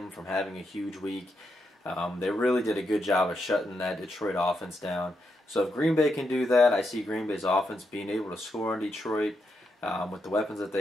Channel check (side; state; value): both; normal; correlation 0.82